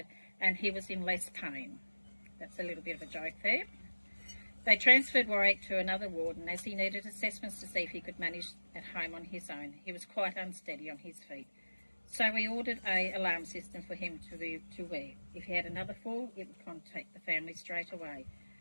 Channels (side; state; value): both; inverted; correlation -1.00